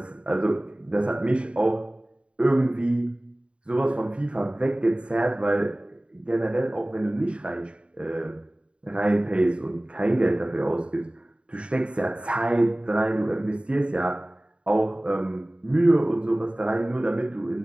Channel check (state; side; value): late; left; 0.058 ms